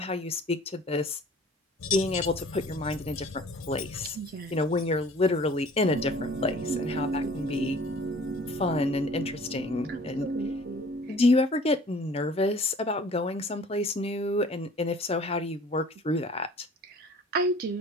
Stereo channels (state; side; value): normal; both; correlation 0.50